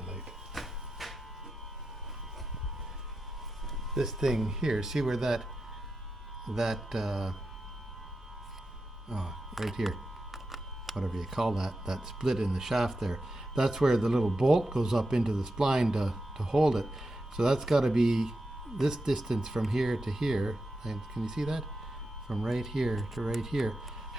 light? This thing here, see where that right here, whatever you call that split in the shaft there, that's where the little bolt goes up into the spline to hold it. So that's got to be this distance from here to here, and can you see that? From right here to right here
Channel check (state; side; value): normal; both; correlation 0.89